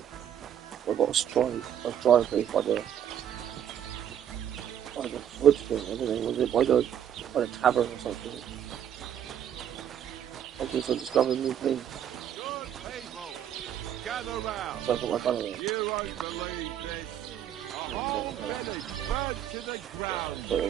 I've got a dry place by the wood thing, I don't know, was it by the tavern or something? Okay, so discovering new things. So I got my gun away.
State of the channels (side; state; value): left; quieter; 9.8 dB